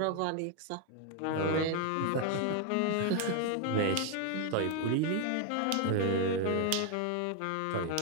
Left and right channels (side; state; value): both; different; correlation 0.00